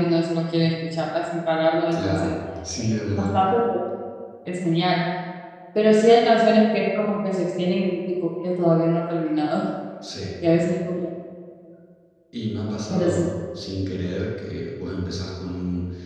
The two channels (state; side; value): identical; both; correlation 1.00